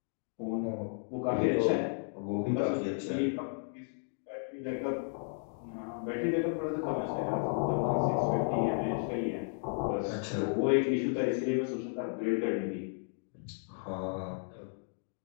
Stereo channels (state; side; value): silent; right; digital silence